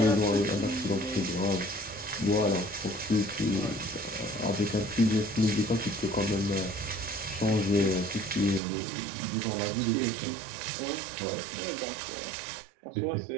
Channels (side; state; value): left; drops out; at 8.6 s